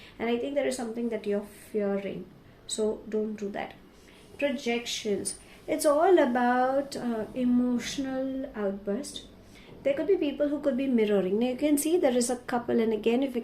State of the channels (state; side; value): identical; both; correlation 1.00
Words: and I think there is something that you're fearing, so don't do that. Projections. It's all about emotional outburst. There could be people who could be mirroring. Now you can see there is a couple, and again if you